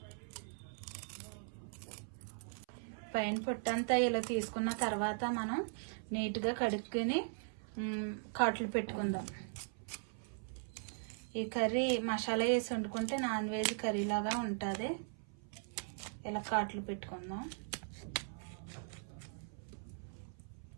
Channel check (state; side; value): silent; left; 52 dB below the other